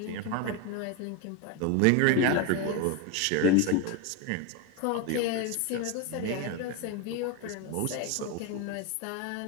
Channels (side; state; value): both; different; correlation 0.02